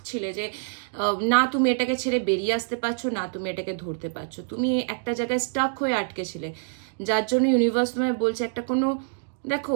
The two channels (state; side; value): silent; left; digital silence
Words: ছিলে যে না তুমি এটাকে ছেড়ে বেরিয়ে আসতে পারছো, না তুমি এটাকে ধরতে পারছো, তুমি একটা জায়গায় স্টাক হয়ে আটকে ছিলে, যার জন্য ইউনিভার্স তোমায় বলছে একটা কোনো,